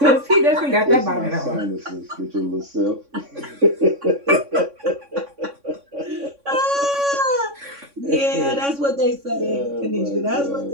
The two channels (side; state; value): left; late; 3.6 ms